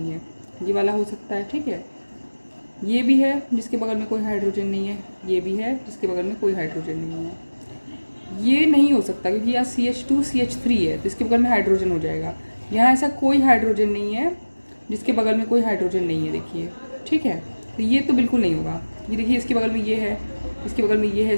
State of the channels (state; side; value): inverted; both; correlation -1.00